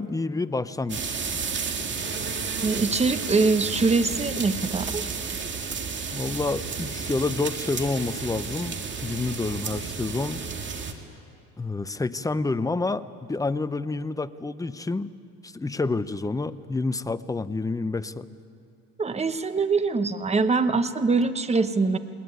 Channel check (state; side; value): normal; both; correlation 0.64